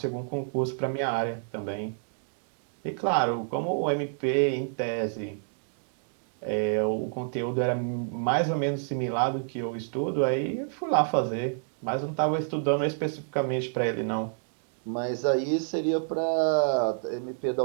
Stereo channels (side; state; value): left; silent; digital silence